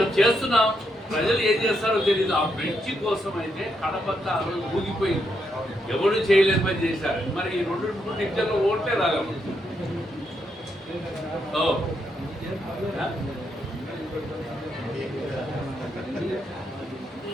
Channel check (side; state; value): both; normal; correlation 0.79